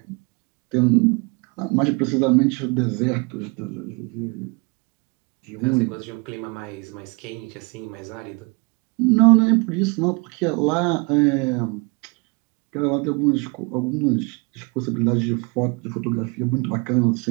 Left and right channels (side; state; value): left; quieter; 31.1 dB